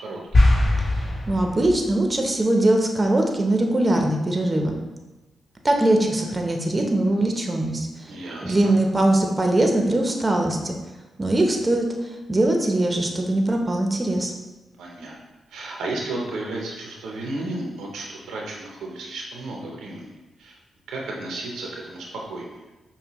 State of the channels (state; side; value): normal; both; correlation 0.92